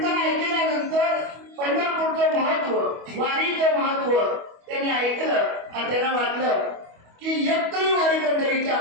ऐकल्यानंतर पंढरपूरचं महत्व, वारीचं महत्व त्यांनी ऐकलं आणि त्यांना वाटलं की एक तरी वारी पंढरीची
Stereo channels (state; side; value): late; left; 25 ms